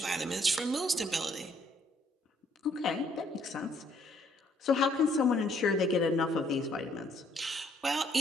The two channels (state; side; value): normal; both; correlation 0.66